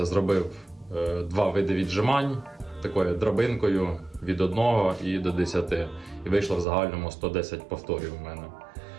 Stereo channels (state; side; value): drops out; left; at 6.7 s